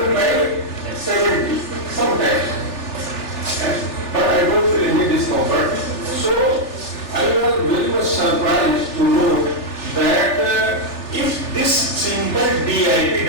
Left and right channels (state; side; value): late; right; 3.4 ms